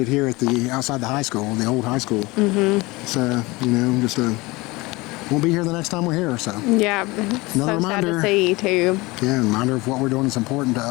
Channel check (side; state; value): right; quieter; 22.8 dB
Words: here at the outside the high school, the old high school. It's you know, just won't be here the next time we're here. So Yeah, Another so sad reminder. to see too. yeah, reminder of what we're doing is important to